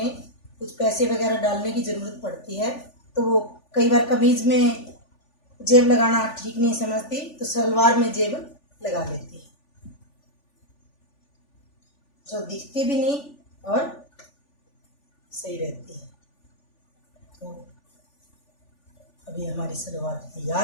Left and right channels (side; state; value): right; late; 3.4 ms